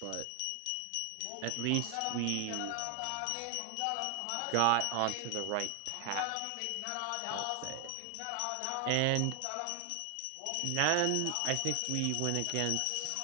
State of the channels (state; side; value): different; both; correlation 0.00